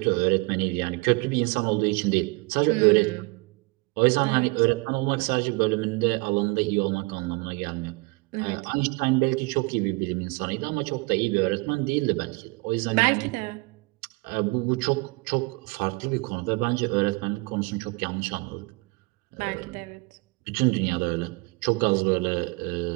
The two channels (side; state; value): left; quieter; 26.8 dB